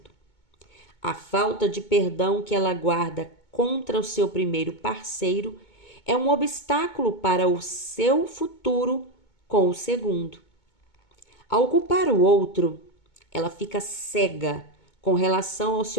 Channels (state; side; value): late; right; 2.2 ms